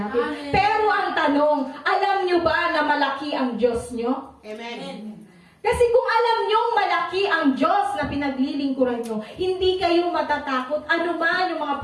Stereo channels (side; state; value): both; identical; correlation 1.00